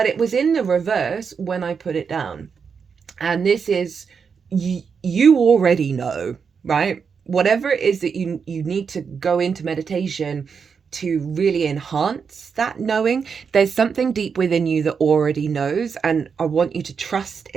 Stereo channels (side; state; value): left; quieter; 6.1 dB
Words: it was in the reverse when I put it down. And this is, you already know, right? Whatever it is that you need to go into meditation to really enhance that knowing, there's something deep within you that already knows, and I want you to trust